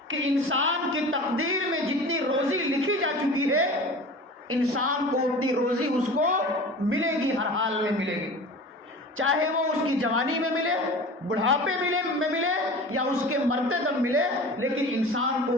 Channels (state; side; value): normal; both; correlation 0.37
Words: کہ انسان کی تقدیر میں جتنی روزی لکھی جا چکی ہے، انسان کو اتنی روزی اس کو ملے گی، ہر حال میں ملے گی، چاہے وہ اس کی جوانی میں ملے، بڑھاپے میں ملے، یا اس کے مرتے دم ملے، لیکن انسان کو